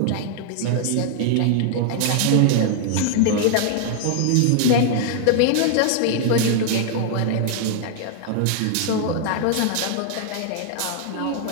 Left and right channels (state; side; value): different; both; correlation 0.00